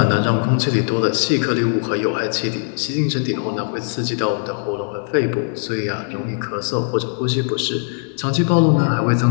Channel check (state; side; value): silent; right; digital silence